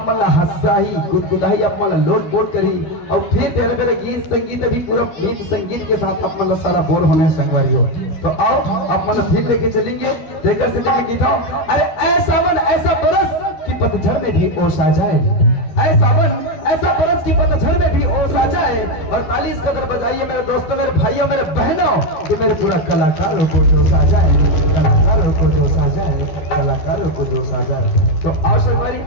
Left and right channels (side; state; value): right; late; 13 ms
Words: मतलब हंसाही गुदगुदाही आप मतलब लोट बोल करी और फिर तेरे मेरे गीत संगीत अभी पूरा गीत संगीत के साथ आप मतलब सारा बोल होने संगवारी हो। तो आओ आप मतलब फिर लेके चलेंगे देकर से लेके गीता। अरे ऐसा मन ऐसा बरस की पतझड़ में भी ओस आ जाए, ऐसा मन ऐसा बरस की पतझड़ में भी ओस आ जाए। और ताली इस कदर बजाइए मेरे दोस्तों मेरे भाइयों मेरे बहनों कि मेरे पूरा कलाकारों को जोश आ जाए, कलाकारों को जोश आ जाए, कलाकारों को जोश आ जाए। तो आओ संगवारी